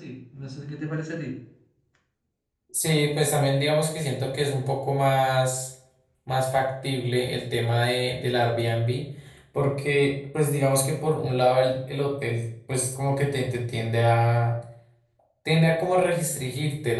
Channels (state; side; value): identical; both; correlation 1.00